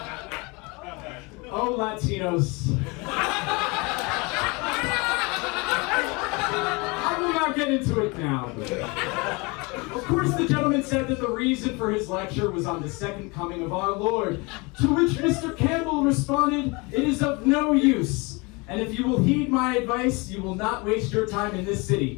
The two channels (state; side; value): quieter; right; 27.4 dB